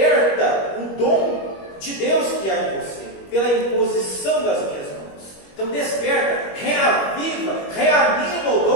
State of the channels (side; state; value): right; late; 21 ms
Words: o dom de Deus que há em você, pela imposição das minhas mãos. Então desperta, reaviva, reanima o